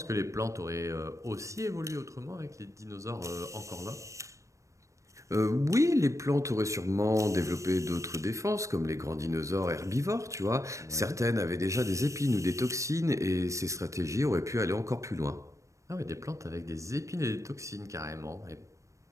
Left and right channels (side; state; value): left; late; 0.15 ms